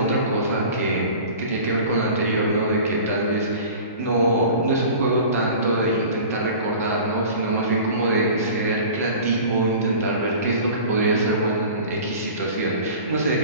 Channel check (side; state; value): both; inverted; correlation -0.40